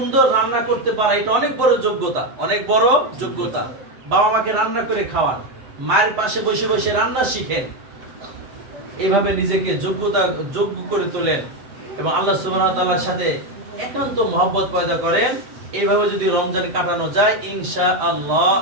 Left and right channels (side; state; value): left; late; 7.9 ms